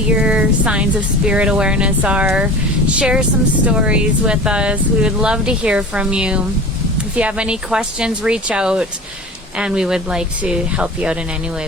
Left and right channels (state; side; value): normal; both; correlation 0.37